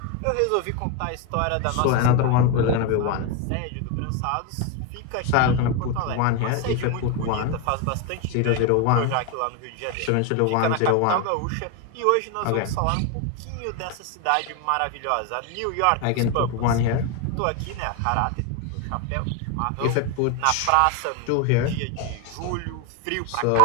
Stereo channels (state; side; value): different; both; correlation 0.01